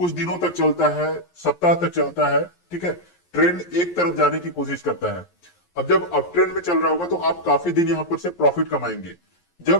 दिनों तक चलता है, सप्ताह तक चलता है, ठीक है, ट्रेंड एक तरफ जाने की कोशिश करता है। अब जब अप ट्रेंड में चल रहा होगा तो आप काफी दिन यहां पर से प्रॉफिट कमाएंगे।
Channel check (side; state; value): right; late; 11 ms